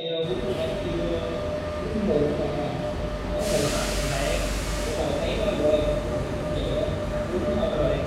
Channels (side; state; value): both; identical; correlation 1.00